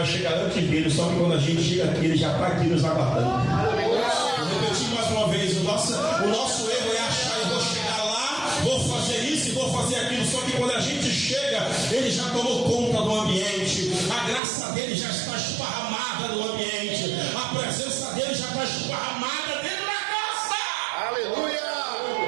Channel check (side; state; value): left; drops out; at 14.4 s